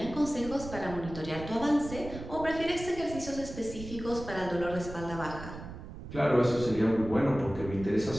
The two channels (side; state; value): right; noise; rumble, 11 dB below the sound